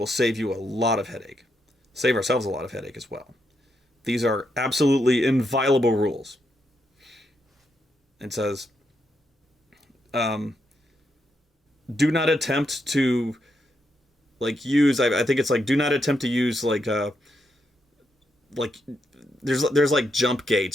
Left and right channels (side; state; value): both; normal; correlation 0.81